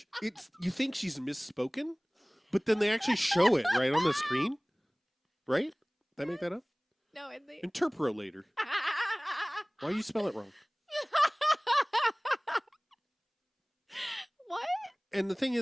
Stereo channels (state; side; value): identical; both; correlation 1.00